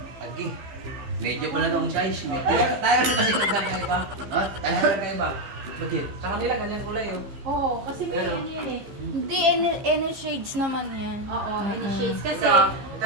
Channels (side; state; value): left; late; 15 ms